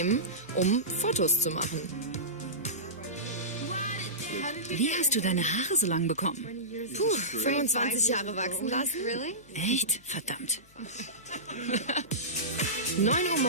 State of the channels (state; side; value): noise; left; hum, 29 dB below the sound